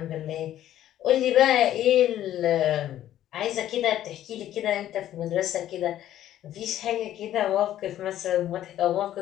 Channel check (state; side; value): quieter; right; 12.3 dB